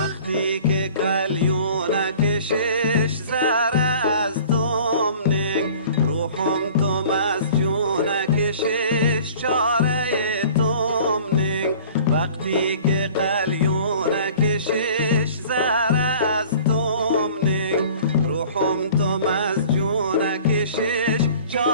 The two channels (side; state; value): both; inverted; correlation -0.47